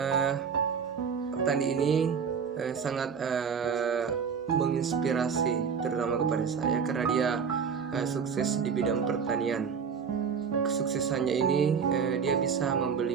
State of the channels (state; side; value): quieter; left; 6.5 dB